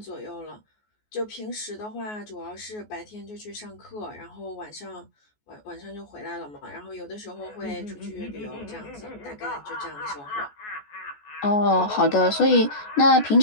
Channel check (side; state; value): right; late; 14 ms